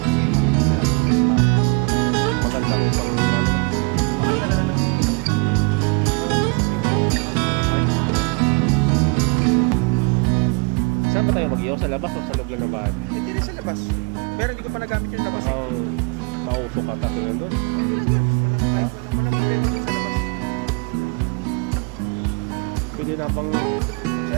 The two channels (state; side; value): quieter; left; 32.0 dB